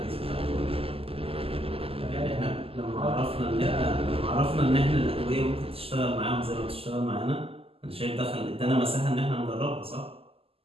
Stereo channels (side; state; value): left; late; 0.28 ms